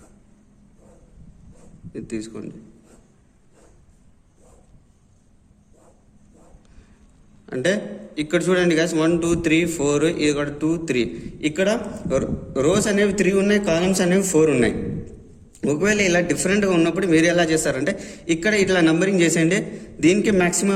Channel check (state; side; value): identical; both; correlation 1.00